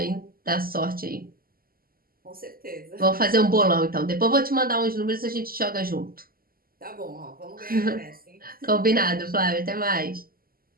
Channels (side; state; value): left; late; 0.42 ms